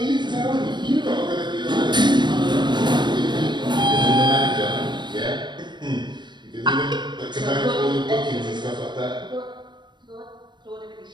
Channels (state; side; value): late; left; 0.22 ms